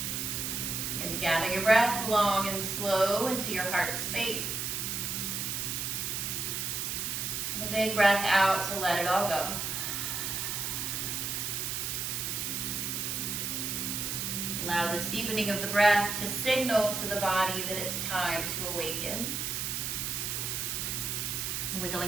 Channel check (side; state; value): right; noise; hiss, 2 dB below the sound